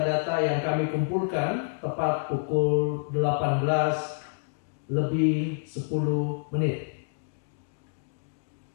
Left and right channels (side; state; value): right; silent; digital silence